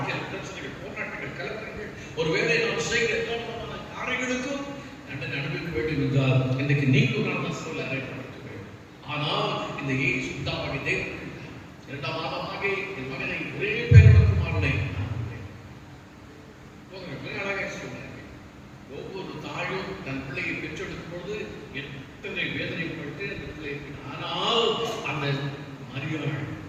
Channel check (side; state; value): both; identical; correlation 1.00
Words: பிரச்சனைகள், போராட்டங்கள், கலக்கங்கள், ஒருவேளை நாம் செய்கிற எல்லா காரியங்களுக்கும் தண்டனை அனுபவிக்க வேண்டும் என்றால் இன்றைக்கு நீங்களும் நான் சொல்ல அறையப்பட வேண்டும். ஆனால் இந்த இயேசு தாவாகி தேவன் 2ஆம் மாதமாக என் மகனை ஒரே பேரோட குமாரனை அழகாக சொன்னார்கள். ஒவ்வொரு தாயும் தன் பிள்ளையை பெற்றெடுக்கும் பொழுது எத்தனை வேதனைப்பட்டு அந்த பிள்ளை. ஆனால் அந்த மரியாள்